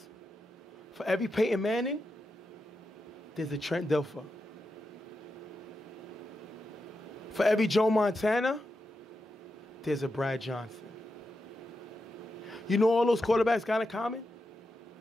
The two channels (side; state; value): both; normal; correlation 0.88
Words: for every Peyton Manning, there's a Trent Dilfer. For every Joe Montana, there's a Brad Johnson. You know all those quarterbacks got in common?